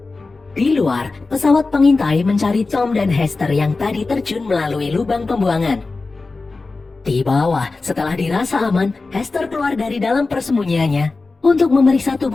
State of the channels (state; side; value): quieter; right; 3.7 dB